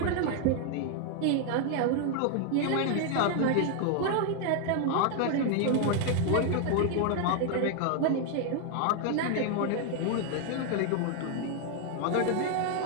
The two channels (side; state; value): both; different; correlation 0.00